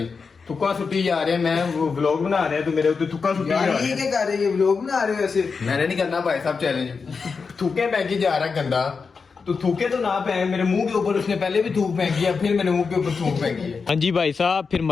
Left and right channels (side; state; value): right; quieter; 5.1 dB